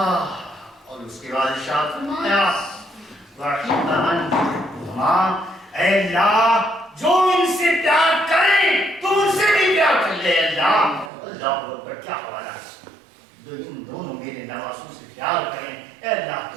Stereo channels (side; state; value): left; drops out; at 11.1 s